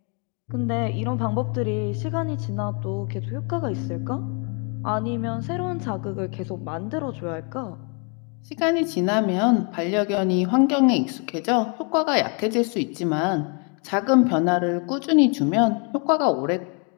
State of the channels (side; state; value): right; quieter; 36.4 dB